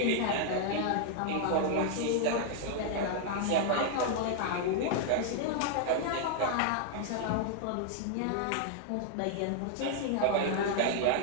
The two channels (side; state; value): both; different; correlation 0.00